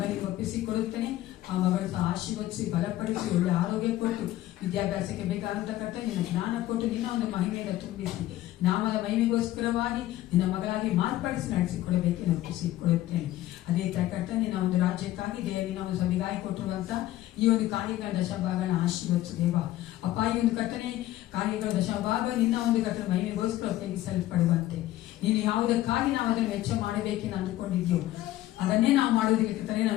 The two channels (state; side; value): quieter; right; 14.8 dB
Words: ಒಪ್ಪಿಸಿಕೊಡುತ್ತೇನೆ. ಆ ಮಗಳು ಸಹ ಆಶೀರ್ವದಿಸಿ ಬಲಪಡಿಸಿ ಒಳ್ಳೆ ಆರೋಗ್ಯ ಕೊಟ್ಟು ವಿದ್ಯಾಭ್ಯಾಸಕ್ಕೆ ಬೇಕಾದಂತ ಕರ್ತನೆ ನಿನ್ನ ಜ್ಞಾನ ಕೊಟ್ಟು ನಿನ್ನ ಒಂದು ಮಹಿಮೆಯಿಂದ ತುಂಬಿಸಿ ನಾಮದ ಮಹಿಮೆಗೋಸ್ಕರವಾಗಿ ನಿನ್ನ ಮಗಳಾಗಿ ಮಾರ್ಪಡಿಸಿ ನಡೆಸಿಕೊಡಬೇಕೆಂದು ಒಪ್ಪಿಸಿಕೊಡುತ್ತೇನೆ. ಅದೇ ತರ ಕರ್ತನೆ ನಿನ್ನ ಒಂದು ರಾಜ್ಯಕ್ಕಾಗಿ ನಿನ್ನ ಒಂದು ಸಭೆಗಾಗಿ ಕೊಟ್ಟಿರುವಂತ ಈ ಒಂದು ಕಾರ್ಯಗಳ ದಶಭಾಗನ ಆಶೀರ್ವದಿಸು ದೇವ. ಅಪ್ಪ, ಈ ಒಂದು ಕರ್ತನೆ ಕಾರ್ಯಗಳ ದಶಭಾಗ ನಿನ್ನ ಒಂದು ಕರ್ತನೆ ಮಹಿಮೆಗೋಸ್ಕರ ಉಪಯೋಗಿಸಲ್ಪಡುವಂತೆ ನೀನು ಯಾವುದಕ್ಕಾಗಿ ನಾವು ಅದನ್ನು ವೆಚ್ಚ ಮಾಡಬೇಕೆಂದು ಅಂದುಕೊಂಡಿದ್ಯೋ ಅದನ್ನೇ ನಾವು ಮಾಡೋದಕ್ಕೆ ಕರ್ತನೆ